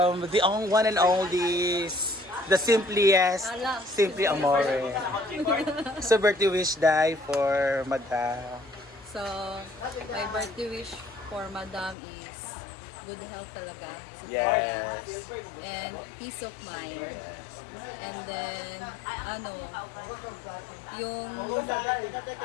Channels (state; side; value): drops out; right; at 12.0 s